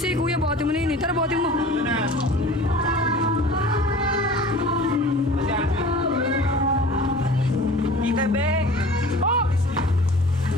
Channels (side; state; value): both; normal; correlation 0.42